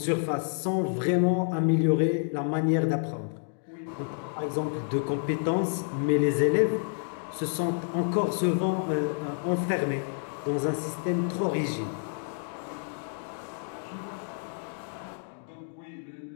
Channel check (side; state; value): right; silent; digital silence